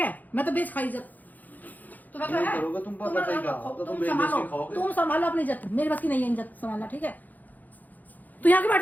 मैं तो बेच खाई इज्जत। तुम्हें क्या नहीं है? करोगे तुम पता चलेगा, अब तो तुम बेच संभालो, के खाओगे। तुम संभालो अपनी इज्जत, मेरी बस की नहीं है इज्जत संभालना, ठीक है? तू यहाँ के बैठ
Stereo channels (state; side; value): late; right; 0.082 ms